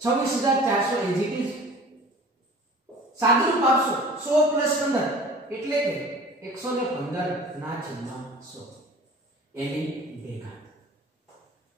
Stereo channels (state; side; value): normal; both; correlation 0.44